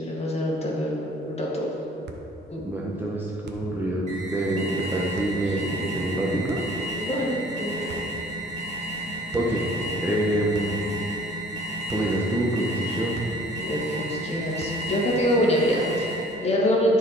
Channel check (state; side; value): normal; both; correlation 0.53